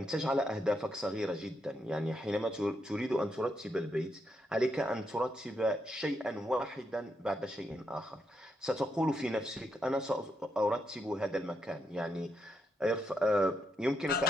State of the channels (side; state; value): both; normal; correlation 0.81